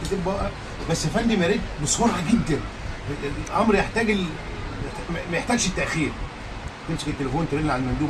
تبقى. بس يا فندم يا ريت بسرعه جدا، الامر يحتاج ما يحتاجش التاخير. تمسك التليفون ترن على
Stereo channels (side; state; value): both; identical; correlation 1.00